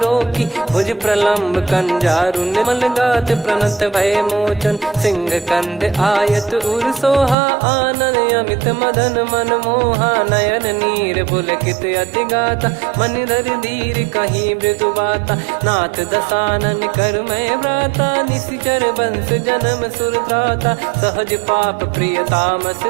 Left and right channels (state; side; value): drops out; left; at 7.4 s